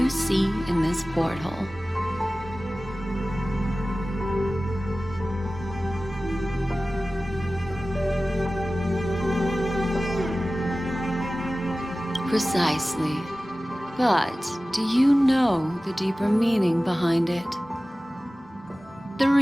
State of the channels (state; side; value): normal; both; correlation 0.97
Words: see in this porthole. Precisely. But do you know the deeper meaning behind it? The